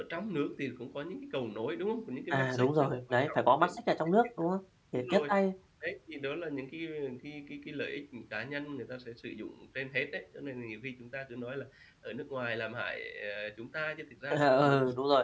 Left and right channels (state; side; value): identical; both; correlation 1.00